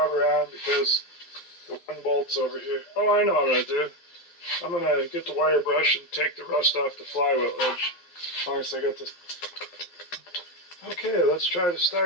on because the one bolt's over here. Oh, I know what I'm gonna do. I'm gonna get the wire brush and take the rust off the flywheel edge. As long as I got this. Okay, let's try to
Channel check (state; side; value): late; right; 11 ms